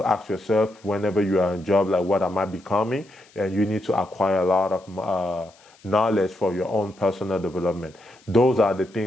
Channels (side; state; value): left; noise; hiss, 29 dB below the sound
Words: ask yourself whenever you are in a job, like, what am I becoming? And you need to acquire a lot of knowledge for your own personal development. Those are the